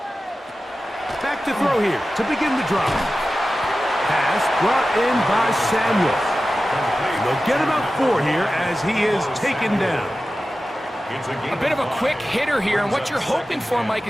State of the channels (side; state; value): both; normal; correlation 0.94